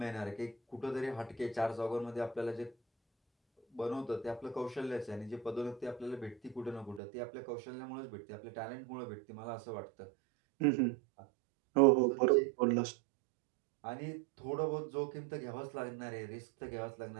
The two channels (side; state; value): left; drops out; at 7.0 s